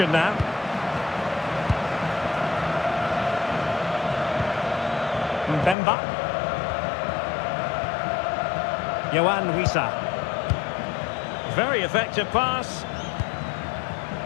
now. Mbemba. Yohan Wissa. Very effective pass.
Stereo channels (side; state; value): right; drops out; at 5.8 s